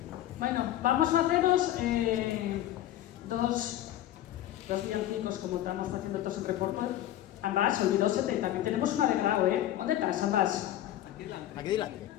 Bueno, vamos a haceros dos villancicos como estamos haciendo todos en reporte. Ambas, olvidósete, también tenemos una de Grau, ¿Dónde estás, Ambas? Aquí delante.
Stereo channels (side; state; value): right; quieter; 13.0 dB